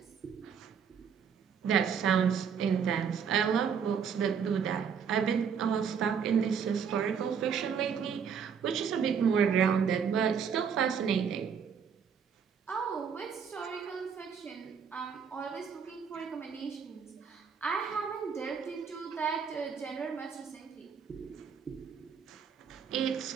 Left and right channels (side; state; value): left; quieter; 6.9 dB